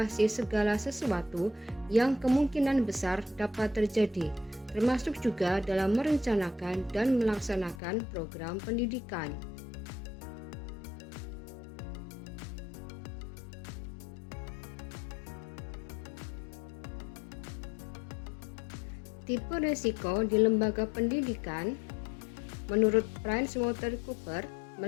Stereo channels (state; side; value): drops out; right; at 7.8 s